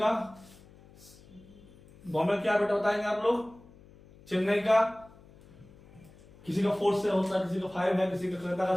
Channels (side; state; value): left; noise; hum, 24 dB below the sound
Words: बॉम्बे क्या बेटा बताएंगे आप लोग, चेन्नई का, किसी का 4 से होता है, किसी का 5 है, किसी का कलकत्ता का